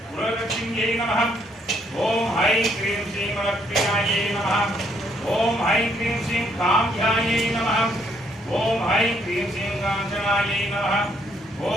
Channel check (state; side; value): normal; both; correlation 0.70